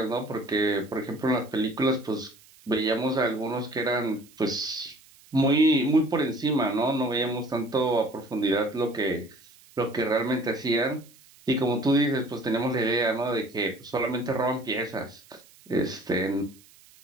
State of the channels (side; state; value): right; noise; hiss, 26 dB below the sound